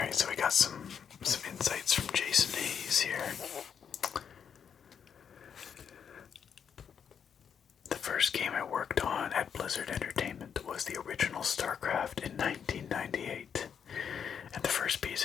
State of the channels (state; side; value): quieter; right; 7.5 dB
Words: so we got some insights from Jason Hayes here. The first game I worked on at Blizzard Entertainment Starcraft in 1998. And the first